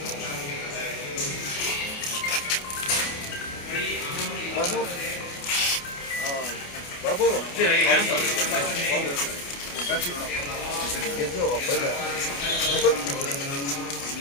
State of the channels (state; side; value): late; right; 28 ms